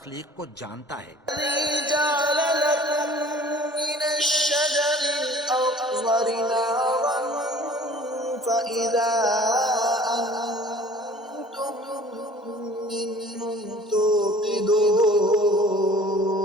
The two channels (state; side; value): normal; both; correlation 0.49